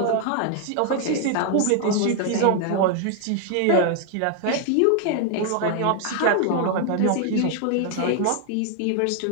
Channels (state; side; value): different; both; correlation 0.00